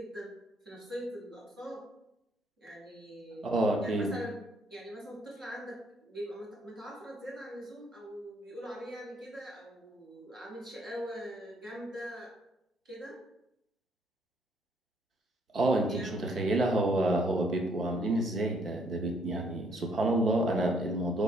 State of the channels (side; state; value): both; normal; correlation 0.67